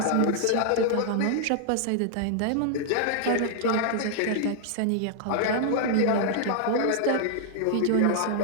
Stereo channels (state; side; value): different; both; correlation -0.01